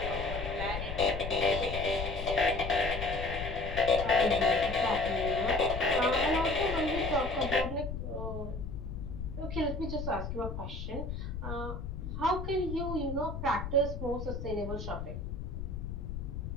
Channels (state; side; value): noise; left; rumble, 6 dB below the sound